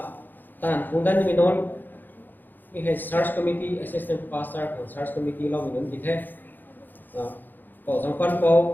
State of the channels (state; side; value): late; right; 0.089 ms